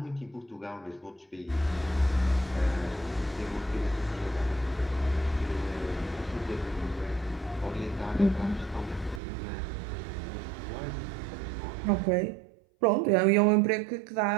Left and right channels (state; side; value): drops out; left; at 9.2 s